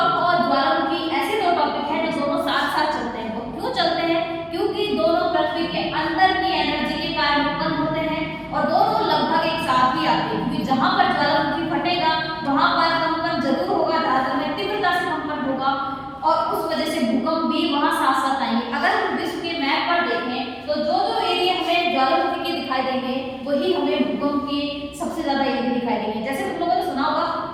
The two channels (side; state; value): both; identical; correlation 1.00